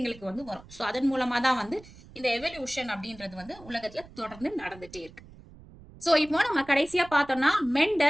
வந்து வரும். ஸோ அதன் மூலமா தான் வந்து இந்த எவல்யூஷன் அப்படின்றது வந்து உலகத்துல தொடர்ந்து நடந்துட்டே இருக்கு. ஸோ இப்போ நம்ம கடைசியா பார்த்தோம்னா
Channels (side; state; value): right; noise; rumble, 20 dB below the sound